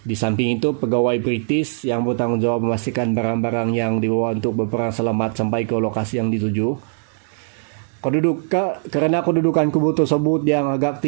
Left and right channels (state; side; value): silent; left; digital silence